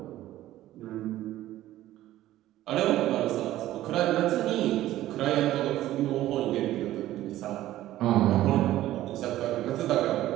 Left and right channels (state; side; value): quieter; left; 14.4 dB